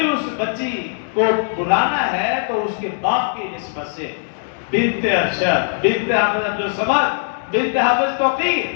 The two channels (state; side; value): silent; right; digital silence